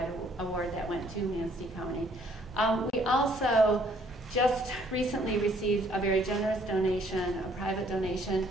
award that went to Manistee County. We also just recently received a very generous donation, a private donation,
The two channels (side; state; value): both; normal; correlation 0.63